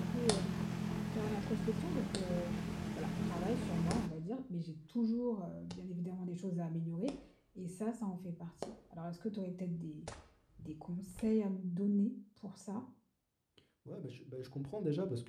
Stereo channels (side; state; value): both; identical; correlation 1.00